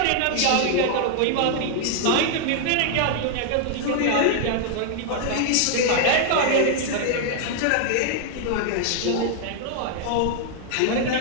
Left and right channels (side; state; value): both; different; correlation 0.00